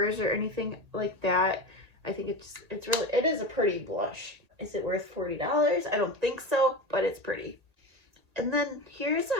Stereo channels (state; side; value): late; left; 1.8 ms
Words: or anything like that. I think it is a pretty blush. Is it worth $40? I don't think so, but it's pretty. And then here's